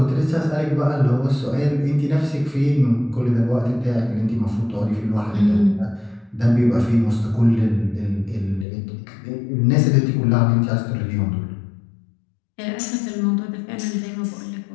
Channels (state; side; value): drops out; right; at 8.7 s